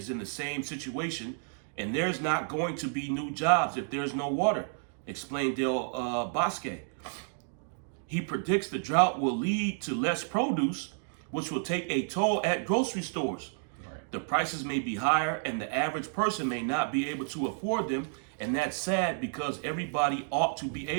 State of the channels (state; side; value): silent; left; digital silence